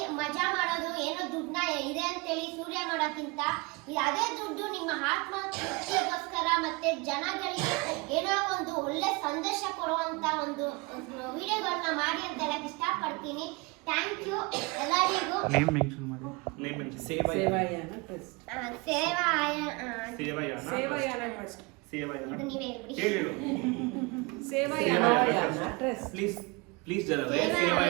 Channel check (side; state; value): left; quieter; 27.5 dB